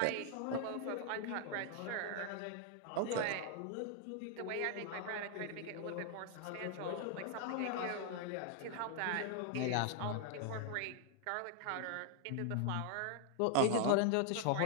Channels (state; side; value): different; both; correlation 0.00